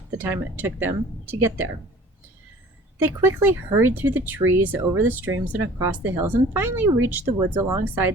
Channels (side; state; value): both; normal; correlation 0.48